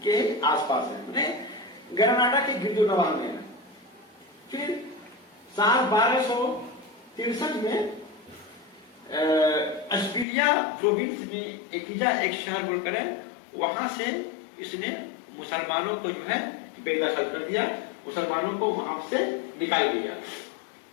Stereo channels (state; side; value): drops out; right; at 10.2 s